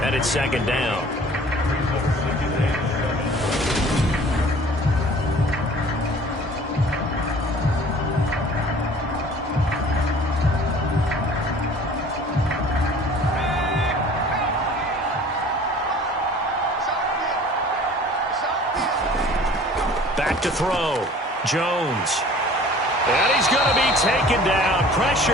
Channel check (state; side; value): normal; both; correlation 0.48